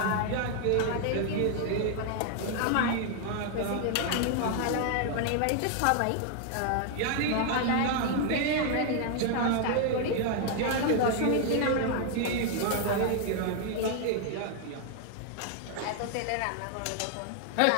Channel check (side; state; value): both; different; correlation 0.00